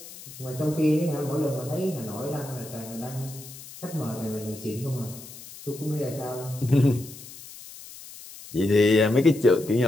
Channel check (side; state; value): left; noise; hiss, 16 dB below the sound